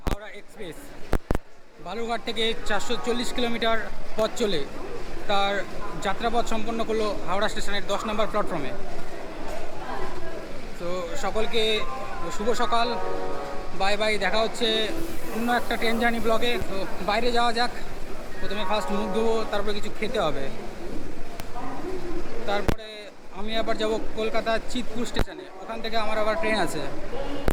হাওড়া এক্সপ্রেস বালুরঘাট থেকে 440 কিলোমিটার পথ চলে তার যাত্রাপথ সম্পন্ন করলো হাওড়া স্টেশনের 10 নম্বর প্ল্যাটফর্মে। তো সকলকে শুভ সকাল। বাই বাই, দেখা হচ্ছে অন্য একটা ট্রেন জার্নি ব্লগে। তো বাইরে যাওয়া যাক। প্রথমে ফার্স্ট মুখ ধোবো, তারপরে কিছু খেতে হবে। তারপরে আমি আবার যাব কলকাতা চিতপুর স্টেশনে, ওখান থেকে আমার আবার ট্রেন আছে।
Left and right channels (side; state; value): both; identical; correlation 1.00